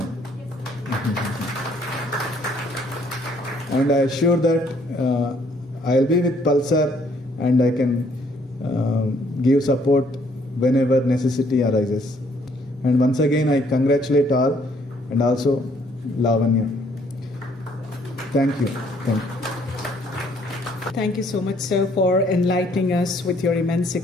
And I assure that I'll be with Pulsar and I can give support whenever necessity arises. And once again, I congratulate all and also Lavanya. Thank you. Thank you. Thank you so much, sir, for enlightening us with your immense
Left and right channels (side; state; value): both; normal; correlation 0.65